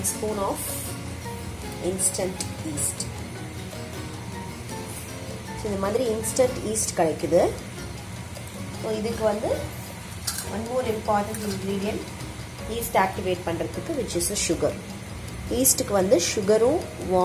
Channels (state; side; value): identical; both; correlation 1.00